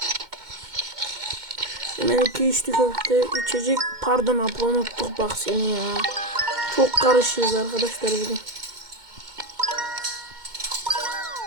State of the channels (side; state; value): left; late; 2.1 ms